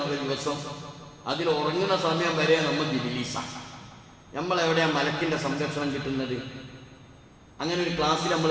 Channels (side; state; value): both; identical; correlation 1.00